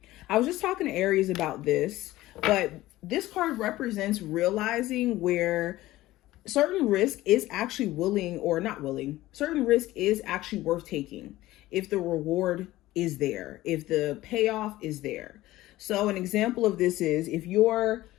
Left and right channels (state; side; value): quieter; right; 16.7 dB